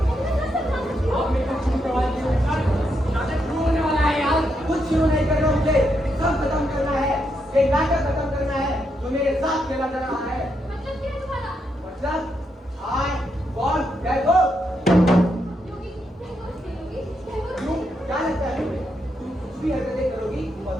आप मेरे को शुरू करवा दीजिए सर, नाटक शुरू होने वाला है यार। कुछ शुरू नहीं करना मुझे। सब खत्म करना है। ये नाटक खत्म करना है जो मेरे साथ खेला जा रहा है। मतलब क्या है तुम्हारा? मतलब I want Diego। योगी टैगोर क्यों क्या लगता है तुम्हें? तुम कुछ भी हरकतें करोगी और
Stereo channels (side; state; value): both; normal; correlation 0.80